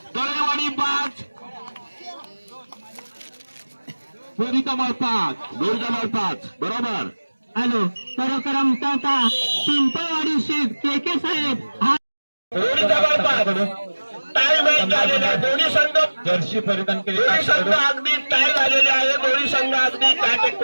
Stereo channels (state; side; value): inverted; both; correlation -1.00